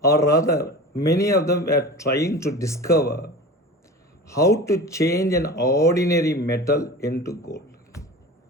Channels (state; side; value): normal; both; correlation 0.34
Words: or rather, many of them were trying to discover how to change an ordinary metal into gold.